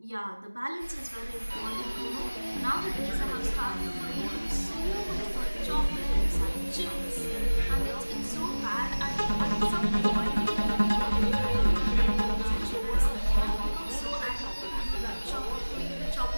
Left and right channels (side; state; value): both; inverted; correlation -1.00